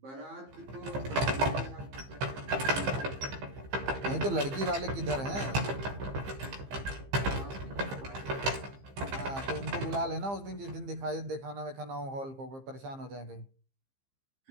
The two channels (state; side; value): late; left; 15 ms